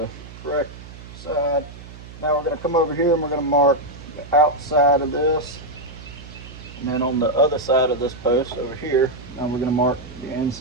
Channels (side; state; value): right; noise; hum, 16 dB below the sound